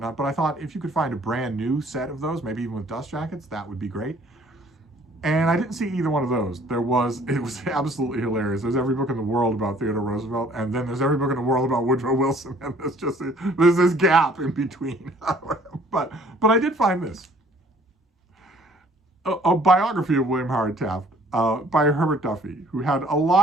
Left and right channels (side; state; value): both; normal; correlation 0.57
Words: but I thought if you could find a brand new set of those, maybe even with dust jackets, that would be great. And I didn't see either one of those. It was absolutely hilarious. There's every book in the world about Theodore Roosevelt, and then there's every book in the world about Woodrow Wilson, and there's this gap in between. But I did find this. A biography of William Howard Taft by Herbert Duffy, who had a